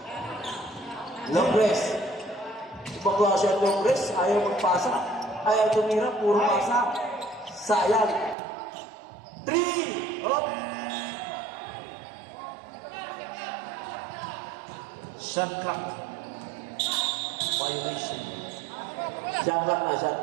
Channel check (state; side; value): drops out; left; at 8.3 s